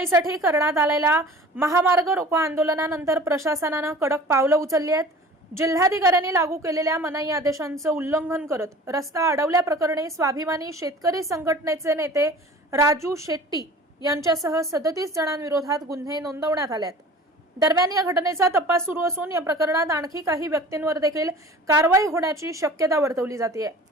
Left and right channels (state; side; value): normal; both; correlation 0.43